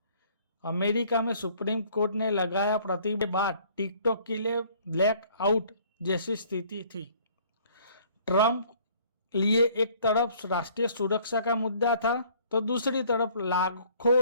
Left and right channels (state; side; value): inverted; both; correlation -0.58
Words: अमेरिका में सुप्रीम कोर्ट ने लगाया प्रतिबंध के बाद टिकटॉक के लिए ब्लैक आउट जैसी स्थिति थी। ट्रंप लिए एक तरफ राष्ट्रीय सुरक्षा का मुद्दा था, तो दूसरी तरफ